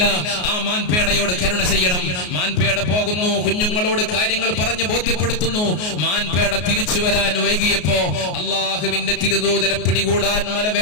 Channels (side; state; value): right; late; 33 ms